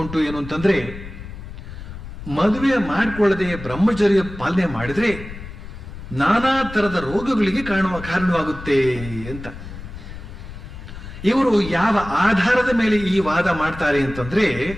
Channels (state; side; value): noise; left; rumble, 12 dB below the sound